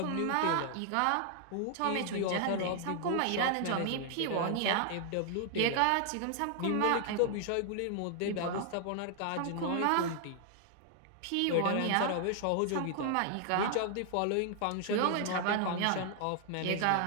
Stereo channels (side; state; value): both; different; correlation 0.00